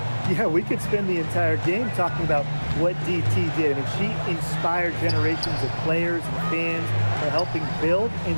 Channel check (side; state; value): both; inverted; correlation -1.00